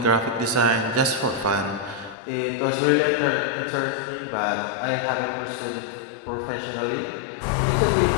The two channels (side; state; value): right; drops out; at 2.1 s